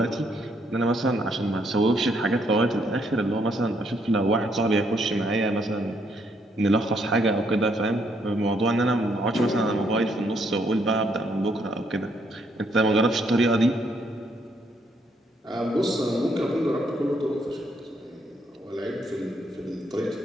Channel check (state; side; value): normal; both; correlation 0.72